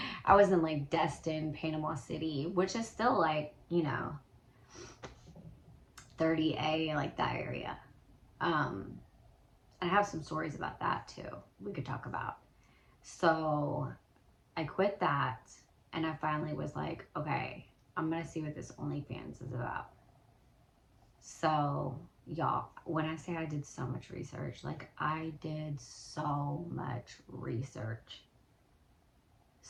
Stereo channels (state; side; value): identical; both; correlation 1.00